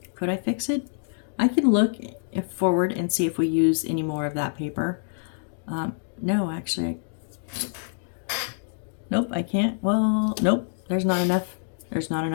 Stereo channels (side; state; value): right; silent; digital silence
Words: could I fix it? I could look forward and see if we use any more of that paper. No, actually, nope, I can't. Well, nope, there's not enough. There's not